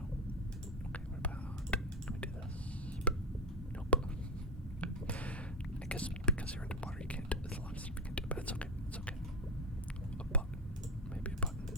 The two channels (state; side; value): normal; both; correlation 0.15